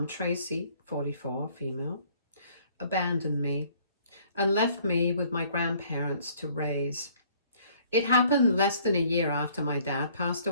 Tracy, 44 female, abandoned me and left me with my grandparents to raise. It happened less than a year after my dad passed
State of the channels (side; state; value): both; inverted; correlation -0.59